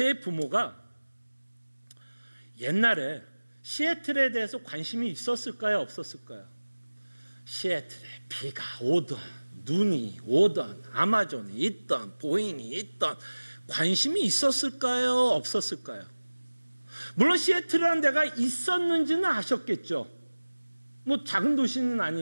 부모가 옛날에 시애틀에 대해서 관심이 있었을까요, 없었을까요? 시애틀에 비가 오던 눈이 오던 아마존이 있던 보잉이 있던 관심이 있었을까요, 없었을까요? 물론 시애틀이라는 데가 있었는지는 아셨겠죠. 뭐 작은 도시는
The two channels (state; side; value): inverted; both; correlation -1.00